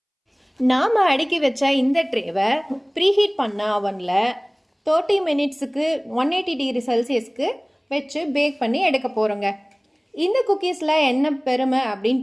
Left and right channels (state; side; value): identical; both; correlation 1.00